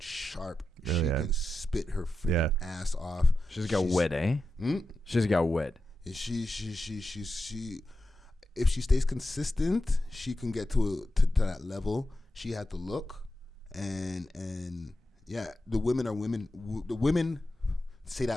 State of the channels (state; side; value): normal; both; correlation 0.89